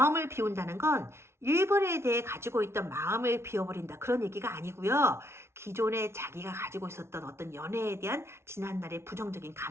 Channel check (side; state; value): left; late; 0.13 ms